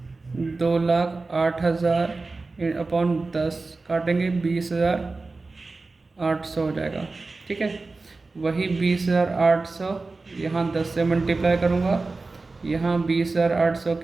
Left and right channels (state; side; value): quieter; left; 3.6 dB